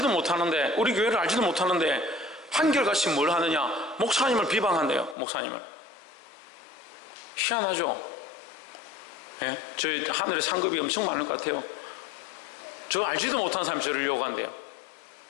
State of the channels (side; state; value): right; drops out; at 5.2 s